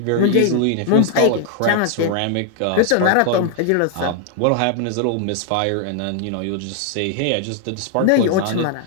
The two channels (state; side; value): different; both; correlation 0.00